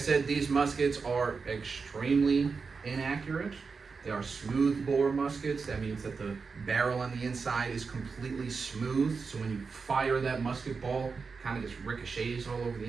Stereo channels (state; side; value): quieter; left; 4.9 dB